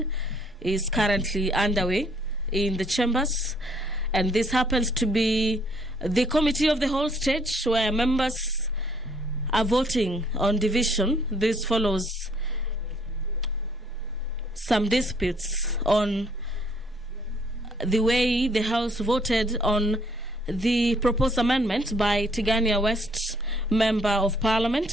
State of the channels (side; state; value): both; normal; correlation 0.65